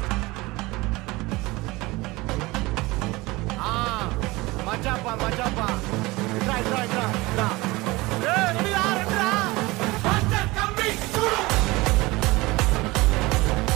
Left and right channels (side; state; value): left; quieter; 21.8 dB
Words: మజాపా మజాపా ఇట్రా ఇట్రా ఇట్రా రెడీరా రెడీరా మాస్టర్ కమింగ్ చూడు